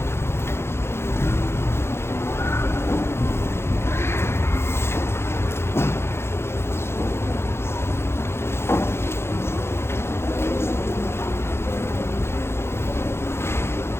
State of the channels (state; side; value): late; right; 0.12 ms